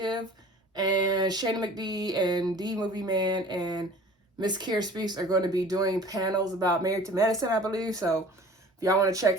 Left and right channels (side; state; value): both; normal; correlation 0.45